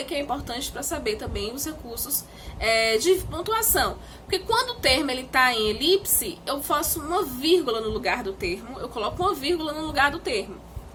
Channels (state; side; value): identical; both; correlation 1.00